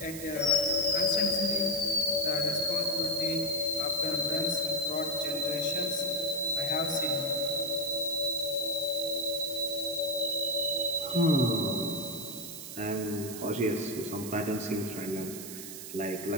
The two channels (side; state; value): right; noise; hiss, 10 dB below the sound